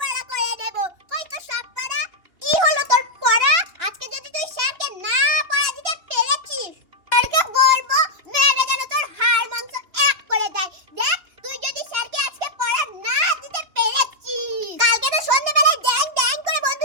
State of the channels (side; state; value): left; late; 2.9 ms